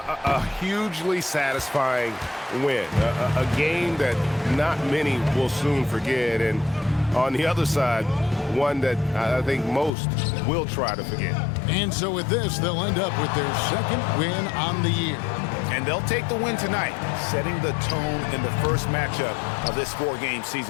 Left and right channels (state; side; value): drops out; right; at 9.9 s